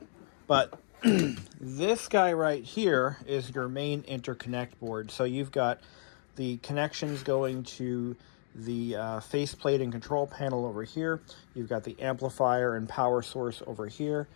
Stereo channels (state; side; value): silent; right; digital silence